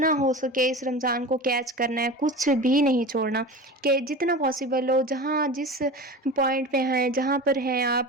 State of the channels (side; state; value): both; normal; correlation 0.32